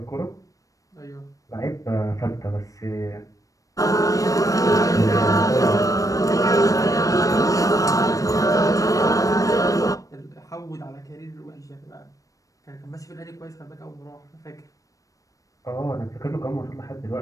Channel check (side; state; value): right; late; 0.16 ms